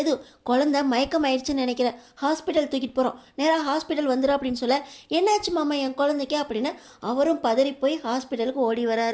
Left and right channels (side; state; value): both; identical; correlation 1.00